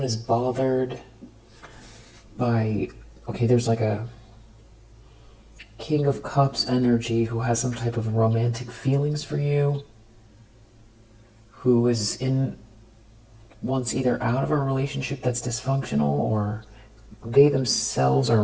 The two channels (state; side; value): identical; both; correlation 1.00